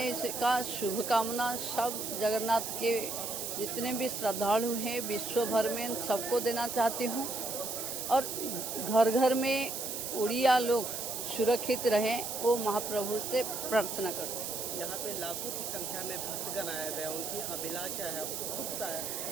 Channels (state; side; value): noise; right; hiss, 4 dB below the sound